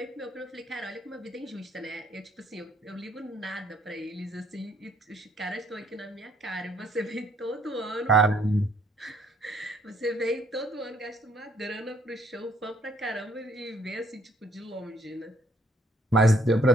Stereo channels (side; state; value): both; normal; correlation 0.65